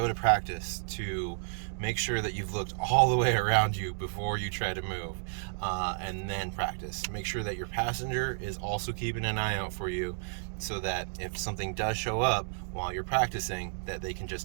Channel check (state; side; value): silent; left; digital silence